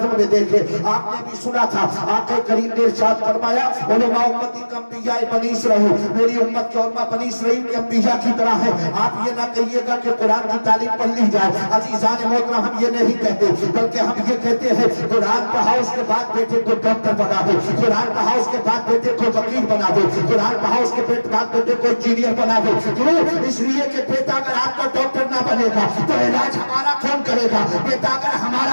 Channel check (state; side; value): inverted; both; correlation -1.00